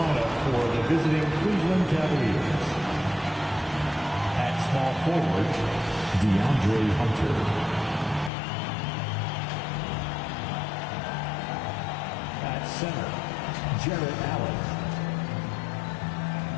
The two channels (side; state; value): right; drops out; at 8.3 s